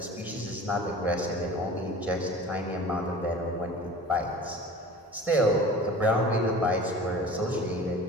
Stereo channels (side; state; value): both; normal; correlation 0.40